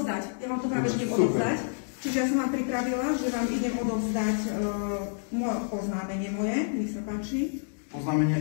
Ja vám to práve idem odovzdať. Čiže ja som vám pripravila, že vám idem odovzdať oznámenie moje. Nech sa páči.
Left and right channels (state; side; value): silent; right; digital silence